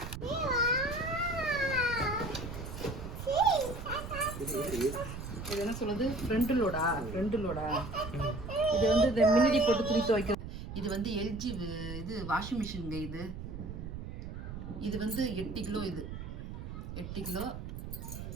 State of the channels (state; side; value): noise; right; rumble, 8 dB below the sound